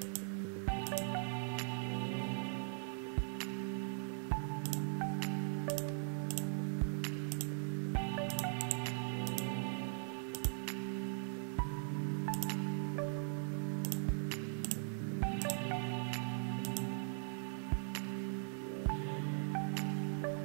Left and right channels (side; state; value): left; silent; digital silence